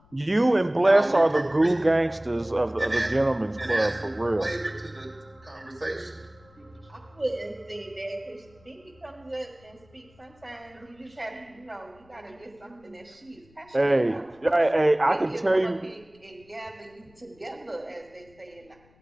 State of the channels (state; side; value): noise; left; rumble, 30 dB below the sound